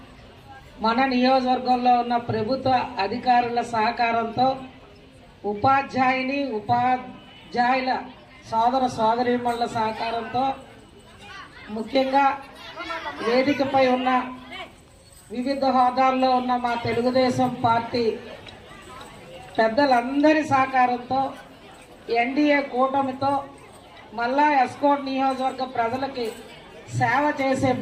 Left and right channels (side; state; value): both; identical; correlation 1.00